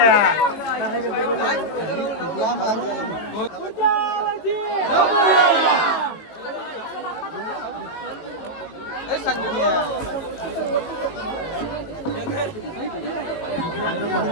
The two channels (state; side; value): late; right; 19 ms